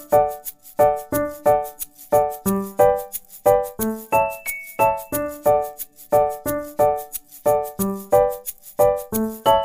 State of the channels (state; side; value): identical; both; correlation 1.00